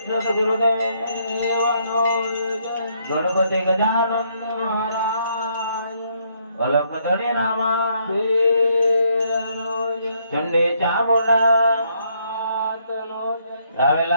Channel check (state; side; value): inverted; both; correlation -0.72